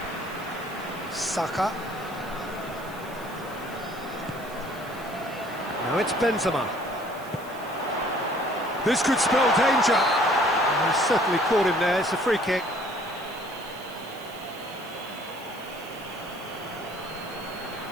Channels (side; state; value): right; noise; hiss, 20 dB below the sound